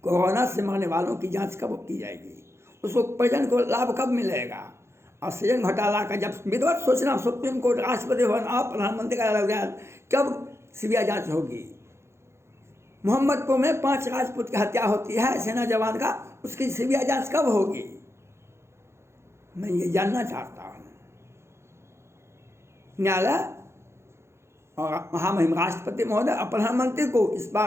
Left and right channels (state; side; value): late; left; 0.13 ms